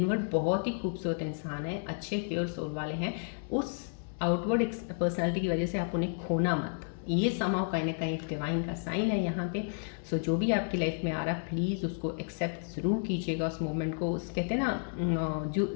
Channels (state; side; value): silent; right; digital silence